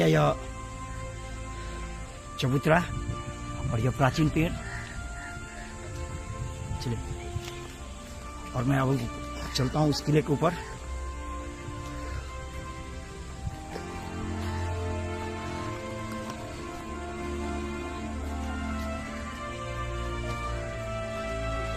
यह चबूतरा और यह प्राचीन पेड़। चलिए, और मैं अब चलता हूँ उस किले के ऊपर।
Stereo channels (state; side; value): identical; both; correlation 1.00